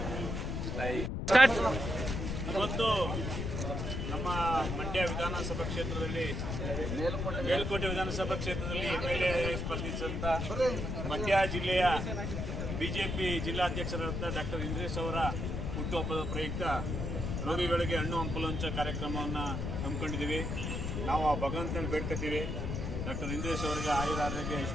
ಇವತ್ತು ನಮ್ಮ ಮಂಡ್ಯ ವಿಧಾನಸಭಾ ಕ್ಷೇತ್ರದಲ್ಲಿ ಮೇಲುಕೋಟೆ ವಿಧಾನಸಭಾ ಕ್ಷೇತ್ರದಲ್ಲಿ MLA ಸ್ಪರ್ಧಿಸಿದಂಥ ಮಂಡ್ಯ ಜಿಲ್ಲೆಯ ಬಿಜೆಪಿ ಜಿಲ್ಲಾಧ್ಯಕ್ಷರಾದ ಡಾಕ್ಟರ್ ಇಂದ್ರೇಶ್ ಅವರ ಹುಟ್ಟುಹಬ್ಬದ ಪ್ರಯುಕ್ತ ರೋಗಿಗಳಿಗೆ ಹಣ್ಣು ಹಂಪಲು ಹಂಚೋ ಕಾರ್ಯಕ್ರಮವನ್ನು ಹಮ್ಮಿಕೊಂಡಿದ್ದೀವಿ. ನಾವು ಆ ಭಗವಂತನ ಬೇಡ್ಕೊತೀವಿ. ಡಾಕ್ಟರ್ ಇಂದ್ರೇಶ್ ಅವರಿಗೆ ಆಯುರ, ಆರೋಗ್ಯ,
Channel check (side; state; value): left; noise; rumble, 2 dB below the sound